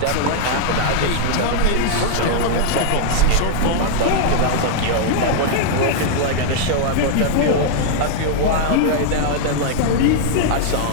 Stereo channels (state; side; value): different; both; correlation -0.01